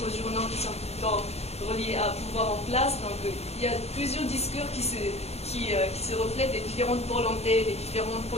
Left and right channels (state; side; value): late; right; 0.31 ms